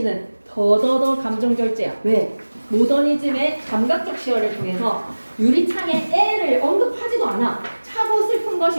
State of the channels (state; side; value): inverted; both; correlation -1.00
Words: 더더더 감정절제야. 왜? 모더니즘의 감각적 시어를 통해서 유리창에 애를 언급하지도 않아. 차고 슬픔 슬픈